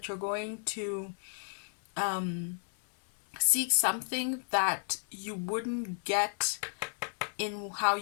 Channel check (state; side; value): silent; right; 56 dB below the other